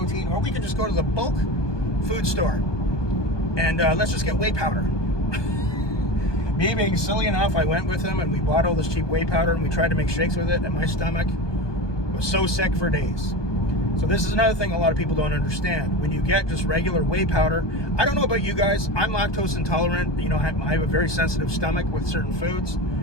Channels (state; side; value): late; right; 1.2 ms